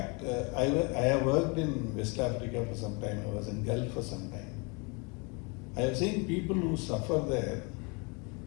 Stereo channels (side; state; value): right; quieter; 31.5 dB